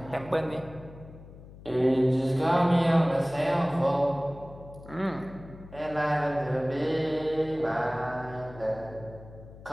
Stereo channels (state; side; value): noise; left; hum, 18 dB below the sound